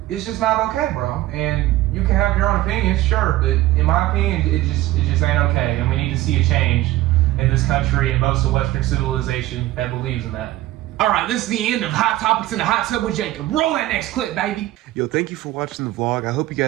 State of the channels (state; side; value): quieter; left; 16.1 dB